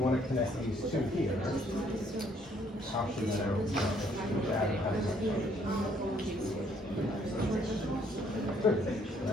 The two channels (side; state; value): both; normal; correlation 0.66